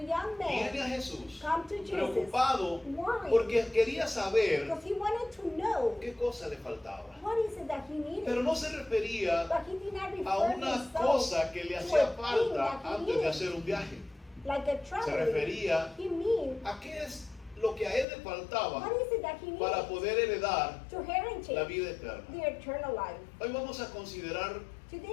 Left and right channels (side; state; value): right; drops out; at 18.1 s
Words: viene man a Jesús come to Jesus, preocupado worried, porque quería saber because he wanted to know qué cosa le faltaba. what is it that he needed. Pero no se refería But he did not a refer una himself cosa que le to hacía a thing falta that he antes de needed, hacer un viaje. like a Se traveling. refería He mean, a qué es lo que a él le faltaba what is it that he para needed poder heredar to la heritage vida eterna. the eternal life. Hoy vamos a considerar